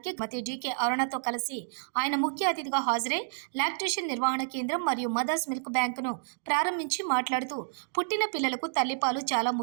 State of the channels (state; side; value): silent; left; digital silence